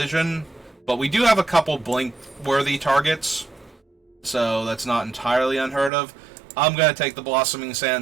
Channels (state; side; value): drops out; left; at 5.9 s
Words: but we do have a couple blink-worthy targets, so that's not entirely unheard of. I'm going to take the Blossoming